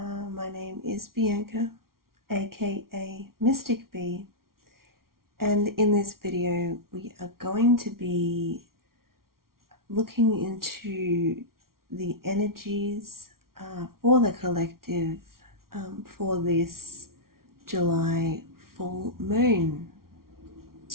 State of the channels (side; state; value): left; late; 0.93 ms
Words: My name is Bianca, aka Mystic Bee, and in this video we are going to be looking into the energies for the collective for this July full moon.